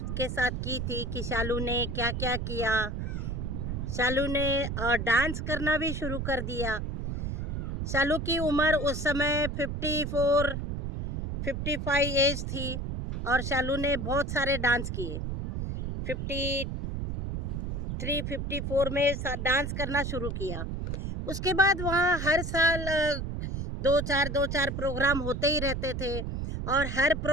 साथ की थी कि शालू ने क्या क्या किया। शालू ने डांस करना भी शुरू कर दिया। शालू की उम्र उस समय 55 एज थी और शालू ने बहुत सारे डांस किए। 53-54 में डांस करना शुरू किया। उसके बाद वहाँ हर साल दो चार प्रोग्राम होते ही रहते थे और हर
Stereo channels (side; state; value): right; noise; rumble, 4 dB below the sound